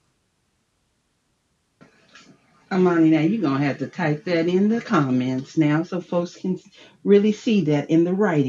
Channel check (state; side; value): identical; both; correlation 1.00